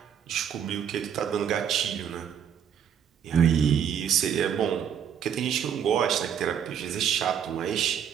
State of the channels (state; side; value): quieter; left; 8.5 dB